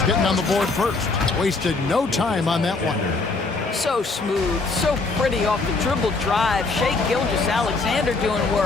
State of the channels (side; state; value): right; quieter; 3.8 dB